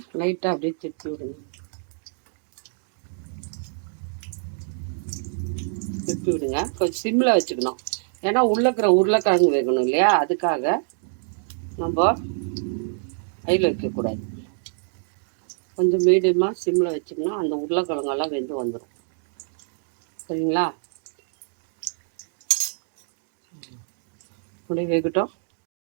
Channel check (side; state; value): left; silent; digital silence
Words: லைட்டாக அப்படியே திருப்பி விடுங்க. திருப்பி விடுங்க. கொஞ்சம் சிம்மில் வச்சுக்கணும். ஏன்னா உள்ளே இருக்கிற உருளைக்கிழங்கு வேகணும் இல்லையா? அதுக்காக நம்ம ஹையில் வைக்கக்கூடாது. கொஞ்சம் மீடியமாக சிம்மில் வச்சிங்கன்னா அந்த உருளைக்கிழங்கெல்லாம் வெந்து வந்துடும். சரிங்களா? அப்படியே வேகட்டும்.